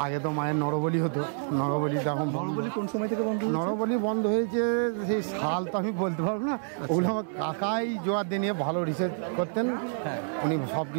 আগে তো মায়ের নরবলি হতো, নরবলি এখন নরবলি কোন সময় থেকে বন্ধ হয়েছে? নরবলি বন্ধ হয়েছে সেই সাল তো আমি বলতে পারবো না, ওগুলো আমার কাকাই জোয়ার নিয়ে ভালো রিসার্চ করতেন, হ্যাঁ উনি সব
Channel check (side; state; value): left; silent; 59 dB below the other